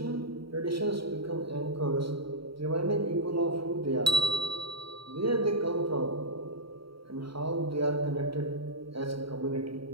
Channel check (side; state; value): left; late; 0.75 ms